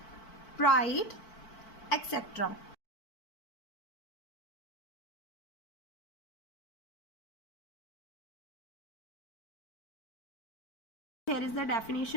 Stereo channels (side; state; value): right; late; 4.5 ms